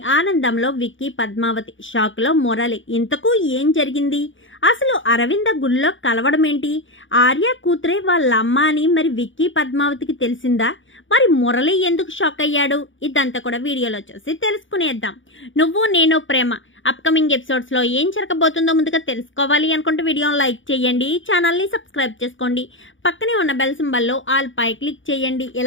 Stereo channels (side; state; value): right; late; 0.56 ms